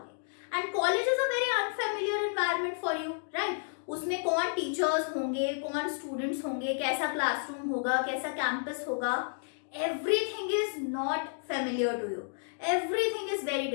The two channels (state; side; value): silent; right; digital silence